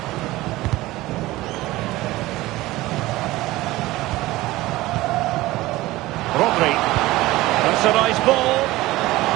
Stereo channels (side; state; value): left; quieter; 18.3 dB